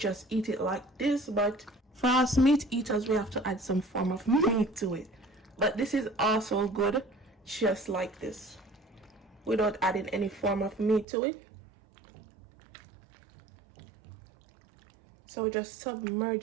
eat it like this. But for us meat eaters, we have to add some form of meat to it. But this is also good just like this, without adding any form of meat to it. So we're just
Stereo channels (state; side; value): drops out; left; at 11.1 s